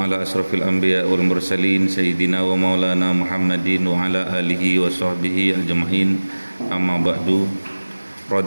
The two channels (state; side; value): inverted; both; correlation -1.00